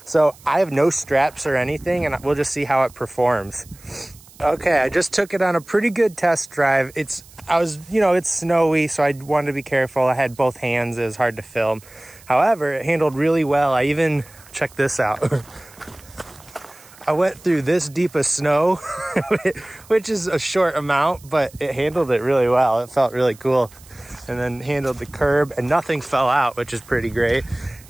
So I have no straps or anything, and we'll just see how it performs. Okay, I just took it on a pretty good test drive. It's snowy, so I wanted to be careful. I had both hands, it was hard to film. However, it handled really well. I even, check this out. I went through this deep of snow, which is a short amount, but it handled it really well. It felt really cool. And then handled the curb, and nothing fell out, which is pretty great.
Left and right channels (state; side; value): noise; right; hiss, 24 dB below the sound